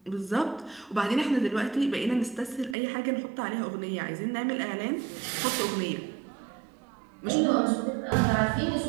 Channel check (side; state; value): left; drops out; at 2.8 s